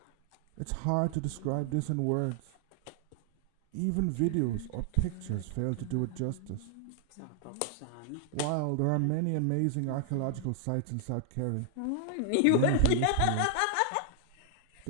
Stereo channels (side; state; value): both; different; correlation 0.00